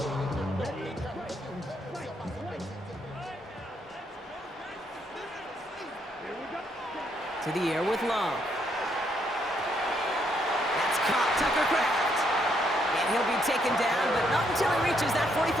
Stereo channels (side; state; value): both; normal; correlation 0.74